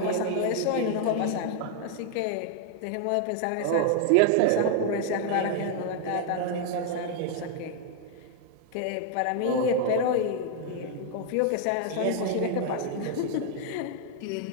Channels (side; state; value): both; different; correlation 0.00